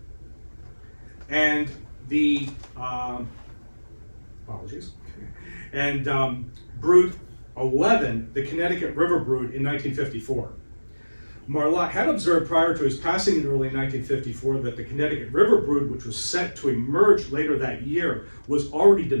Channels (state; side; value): inverted; both; correlation -1.00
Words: And the, apologies, and brood 11, the Connecticut River brood in 1954. Marlatt had observed prior to his passing in early 1954 that the Connecticut River brood, which was set to emerge later that year, was already